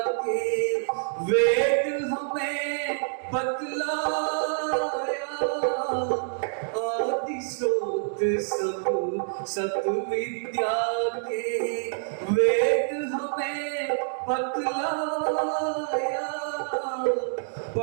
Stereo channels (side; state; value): left; silent; digital silence